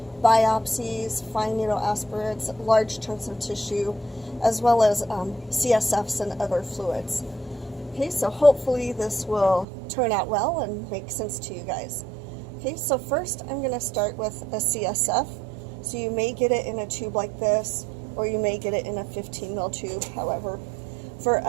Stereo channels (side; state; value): left; drops out; at 9.7 s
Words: fine needle aspirates, large chunks of tissue, as well as CSFs and other fluids. Okay, so hopefully this will turn out well and make sense to you guys. Okay, so first I'm going to start with a CSF. So you may get it in a tube like this, or you may get it in a 15 ml tube, however. For